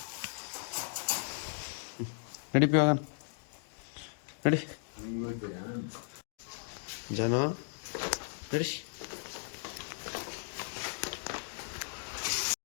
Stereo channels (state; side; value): silent; right; digital silence